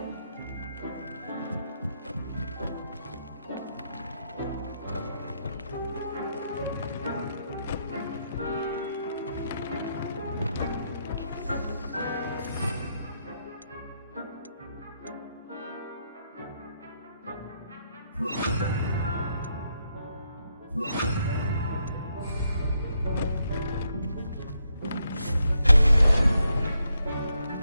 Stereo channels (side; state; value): both; inverted; correlation -0.79